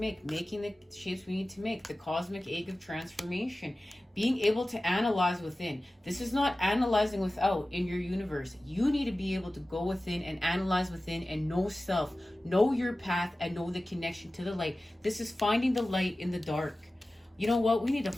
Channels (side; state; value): both; normal; correlation 0.96